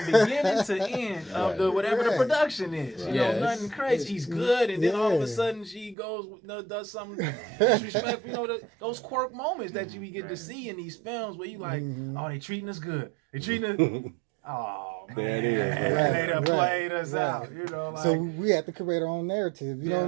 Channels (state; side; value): drops out; left; at 6.0 s